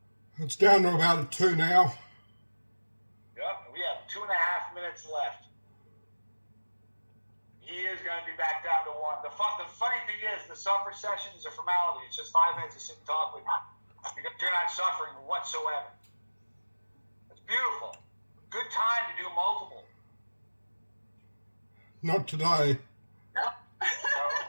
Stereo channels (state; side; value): inverted; both; correlation -1.00